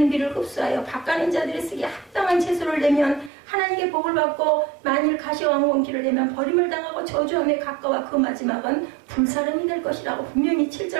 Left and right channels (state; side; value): drops out; left; at 3.3 s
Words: 비를 흡수하여 밭가는 자들이 쓰기에 합당한 채소를 내면 하나님께 복을 받고 만일 가시와 왕권기를 내면 버림을 당하고 저주함에 가까워 그 마지막은 불사름이 될 것이라고 분명히